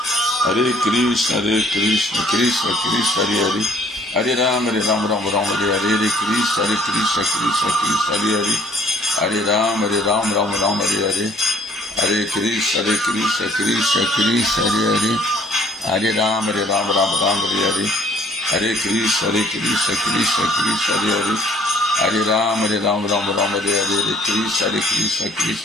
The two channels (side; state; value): both; normal; correlation 0.58